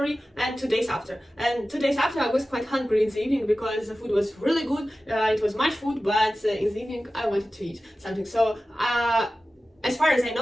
and 2 days after. And 2 days after, I was quite hungry in the evening because the food was really good. It was much food, but in the evening I wanted to eat something. So as far as I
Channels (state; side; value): normal; both; correlation 0.95